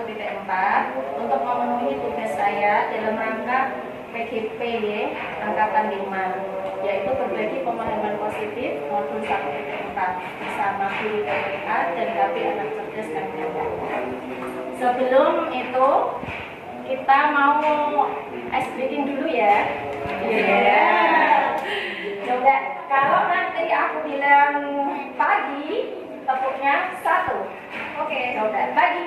untuk memenuhi tugas saya dalam rangka PGP Angkatan 5, yaitu berbagi pemahaman positif modul 1.4 bersama guru TPA dan KB Anak Cerdas kami. Sebelum itu kita mau ice breaking dulu ya. Coba kalau nanti aku bilang pagi, tepuknya 1. Oke, coba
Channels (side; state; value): both; identical; correlation 1.00